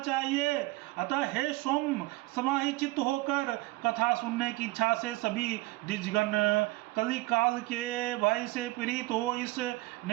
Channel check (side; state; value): left; quieter; 20.5 dB